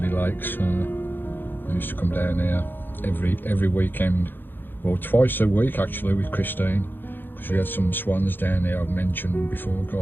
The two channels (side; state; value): right; late; 0.096 ms